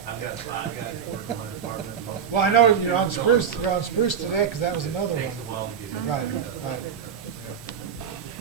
I've got 5 guys that work in my department. Most of Well, I know them- you're on Spruce, today, because that was another Takes a one. while to get in. Right, right, yeah.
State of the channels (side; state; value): left; quieter; 7.7 dB